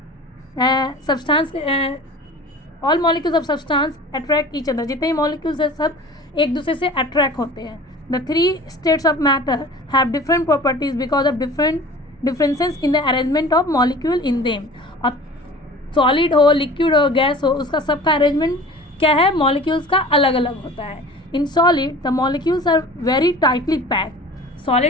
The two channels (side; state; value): both; normal; correlation 0.41